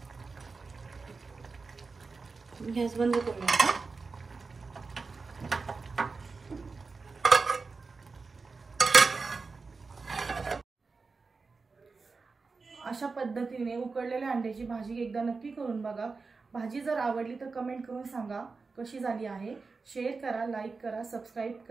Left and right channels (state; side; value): quieter; left; 4.3 dB